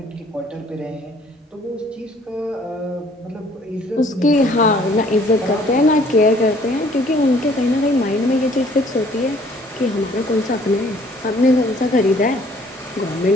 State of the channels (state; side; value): normal; both; correlation 0.58